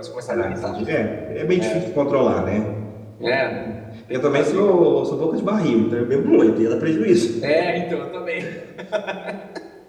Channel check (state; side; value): identical; both; correlation 1.00